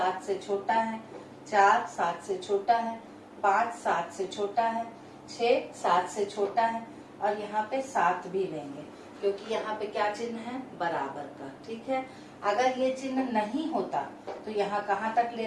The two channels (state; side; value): identical; both; correlation 1.00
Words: से छोटा है, 4 7 से छोटा है, 5 7 से छोटा है, 6 7 से छोटा है, और यहाँ पे 7 भी लेंगे क्योंकि यहाँ पे क्या चिन्ह है, बराबर का, ठीक है। अगर ये चिन्ह नहीं होता तो यहाँ कहाँ तक